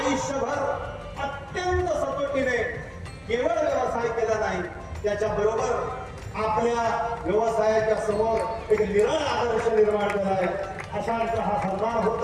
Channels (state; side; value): identical; both; correlation 1.00